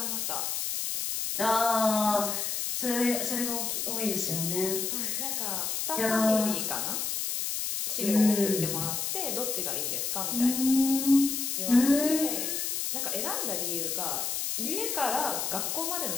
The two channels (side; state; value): left; noise; hiss, 1 dB below the sound